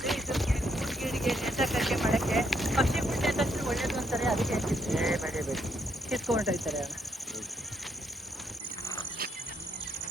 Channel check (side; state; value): both; normal; correlation 0.74